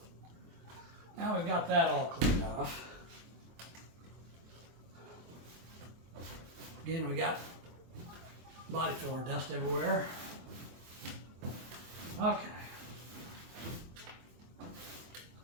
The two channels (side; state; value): left; late; 24 ms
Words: Now we've got that all cleaned off. Again, we got body filler dust everywhere. Okay.